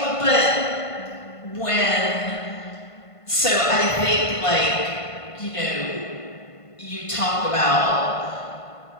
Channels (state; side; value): late; right; 1.5 ms